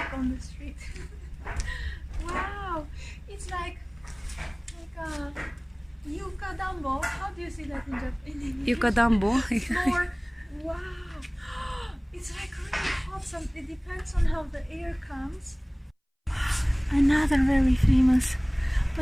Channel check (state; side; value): identical; both; correlation 1.00